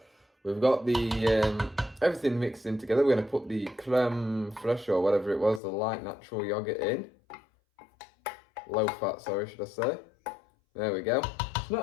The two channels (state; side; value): drops out; right; at 5.6 s